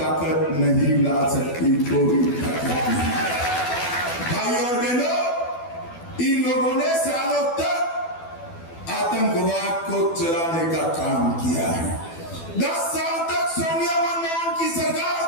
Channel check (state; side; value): late; right; 12 ms